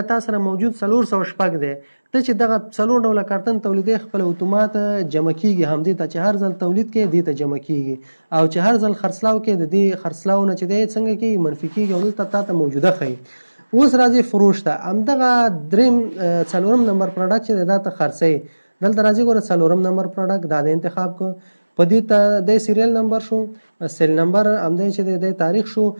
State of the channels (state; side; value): inverted; both; correlation -1.00